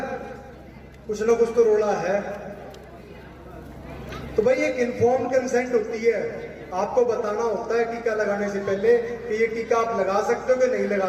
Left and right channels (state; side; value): identical; both; correlation 1.00